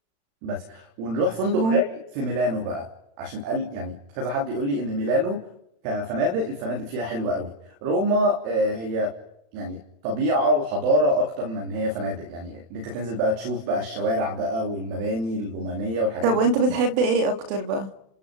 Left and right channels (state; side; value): late; left; 36 ms